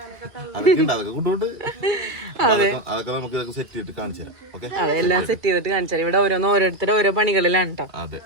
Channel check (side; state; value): left; late; 2.3 ms